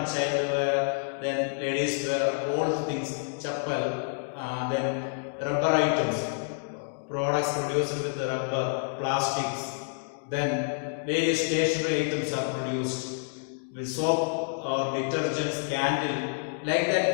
child wear, then ladies wear, all things, chappal. Then rubber items, products produced with the rubber, plastics, then various stationery items are produced with soap or detergents, candle, like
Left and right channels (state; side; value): silent; right; digital silence